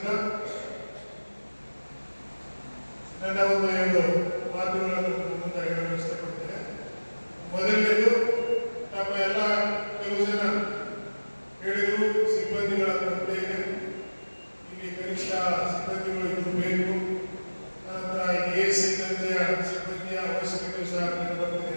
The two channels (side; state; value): both; inverted; correlation -1.00